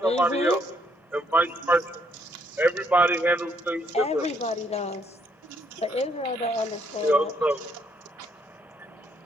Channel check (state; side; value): normal; both; correlation 0.71